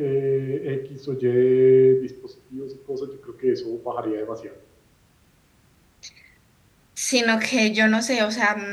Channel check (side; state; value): both; identical; correlation 1.00